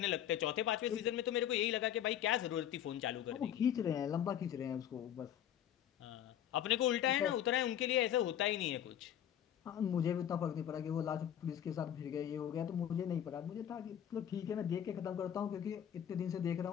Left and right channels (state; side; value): quieter; right; 10.3 dB